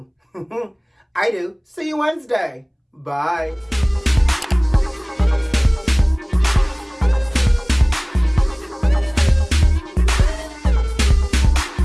I do. See you Wednesday. Bye.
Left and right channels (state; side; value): identical; both; correlation 1.00